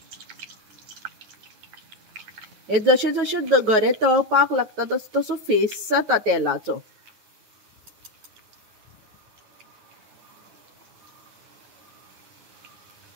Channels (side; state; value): left; late; 9.4 ms